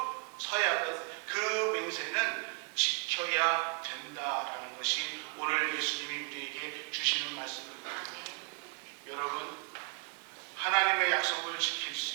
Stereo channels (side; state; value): left; quieter; 35.6 dB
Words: 서약은 그 맹세는 지켜야 된다라는 것이 오늘 예수님이 우리에게 주시는 말씀입니다. 여러분, 하나님의 약속을 지킬